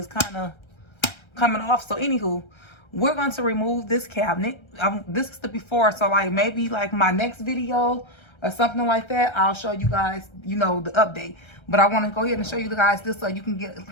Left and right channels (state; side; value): late; right; 1.3 ms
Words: kind of coming off. So anywho, we're going to remove this cabinet. This is the before, so like maybe like my next video or something like that, I'll show you guys, you know, the update. But I want to go ahead and show you guys this so you can get